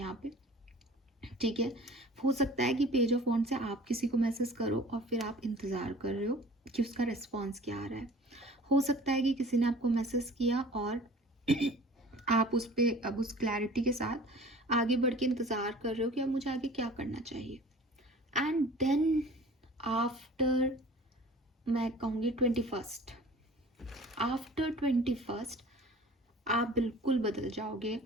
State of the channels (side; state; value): both; normal; correlation 0.45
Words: पे, ठीक है। हो सकता है कि पेज ऑफ वॉन्ड से आप किसी को मैसेज करो और फिर आप इंतज़ार कर रहे हो कि उसका रिस्पॉन्स क्या आ रहा है। हो सकता है कि किसी ने आपको मैसेज किया और आप उस पर अब उस क्लैरिटी के साथ आगे बढ़ के इंतज़ार कर रहे हो कि अब मुझे आगे क्या करना चाहिए। एंड देन आफ्टर, मैं कहूँगी 21st, आफ्टर 21st आप बिल्कुल बदल जाओगे।